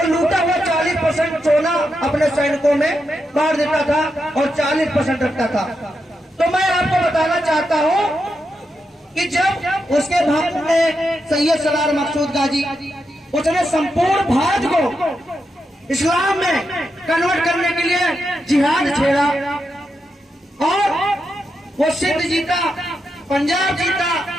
लूटा हुआ 40% सोना अपने सैनिकों में बांट देता था और 40% रखता था। तो मैं आपको बताना चाहता हूँ कि जब उसके भारत में सैयद सलार मकसूद गाजी, उसने संपूर्ण भारत को इस्लाम में कन्वर्ट करने के लिए जिहाद छेड़ा और वो सिंध जीता, पंजाब जीता,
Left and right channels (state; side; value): normal; both; correlation 0.85